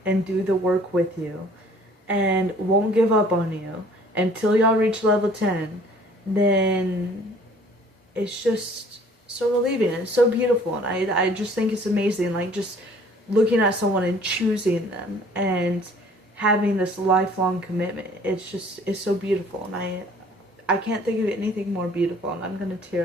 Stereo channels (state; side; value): normal; both; correlation 0.54